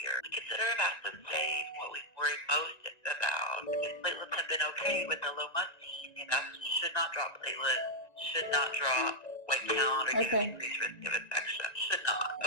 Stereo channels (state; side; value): late; right; 1.9 ms